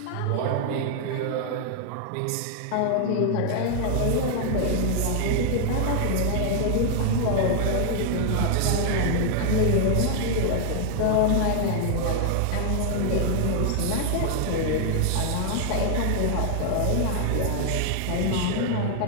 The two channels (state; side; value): different; both; correlation 0.00